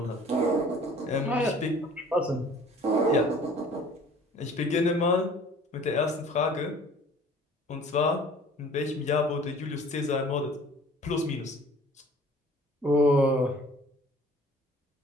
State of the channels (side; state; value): both; normal; correlation 0.50